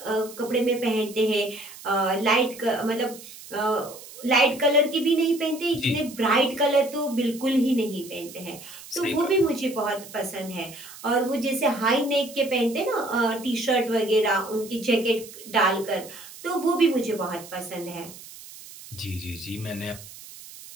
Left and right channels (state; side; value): noise; right; hiss, 16 dB below the sound